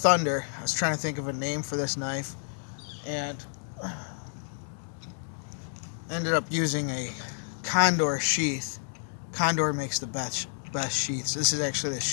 I was trying to think of a name for this knife and ended up using a Condor sheath. Condor makes the best sheaths. This is actually the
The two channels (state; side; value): silent; right; digital silence